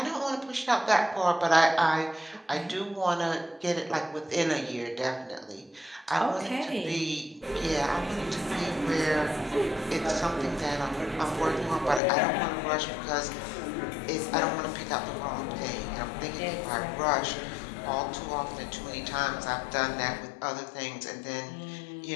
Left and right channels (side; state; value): right; drops out; at 12.0 s